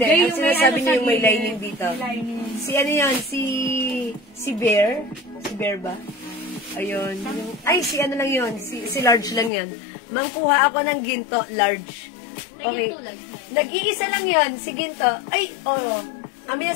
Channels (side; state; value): right; drops out; at 9.5 s